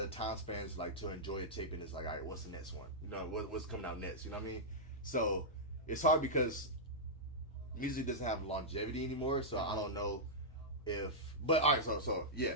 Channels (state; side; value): normal; both; correlation -0.09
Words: time spans like to enjoy a tape, and it's like, all right, what's the next one? You know, what's coming out next? You know what I mean? So it's hard because music doesn't have longevity anymore. So I don't know if. But all right, so yeah.